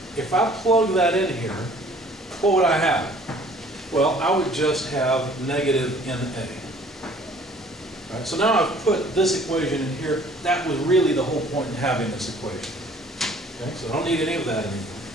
If I plug that in here, what would I have? Well, I would just have negative NA. Right, so now I've put this equation in here. That was really the whole point in having this equation. Okay, so I don't need any of that anymore.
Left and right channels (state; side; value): normal; both; correlation 0.54